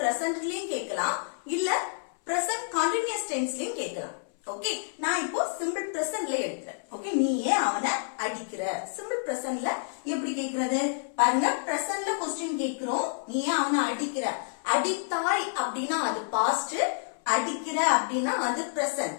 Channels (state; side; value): silent; right; 57 dB below the other